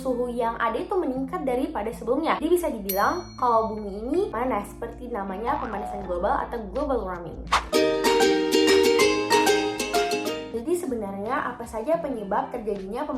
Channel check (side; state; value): both; identical; correlation 1.00